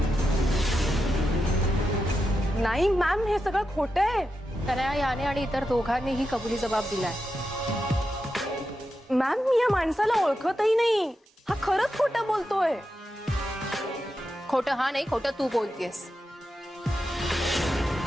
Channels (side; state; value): both; normal; correlation 0.88